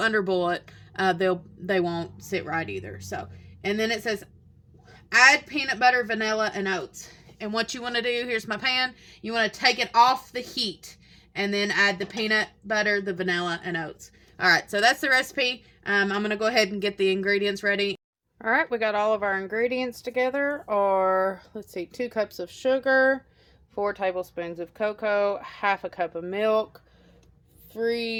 it, they won't sit right either. So, and then it says add peanut butter, vanilla, and oats. And what you want to do, here's my pan, you want to take it off the heat and then add the peanut butter, the vanilla, and oats. All right, so that's the recipe. I'm going to go ahead and get the ingredients ready. All right, we got all of our ingredients together. Or, let's see, 2 cups of sugar, 4 tablespoons of cocoa, half a cup of milk,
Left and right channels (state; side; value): identical; both; correlation 1.00